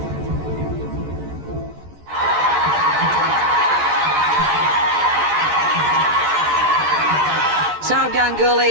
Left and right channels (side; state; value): left; late; 14 ms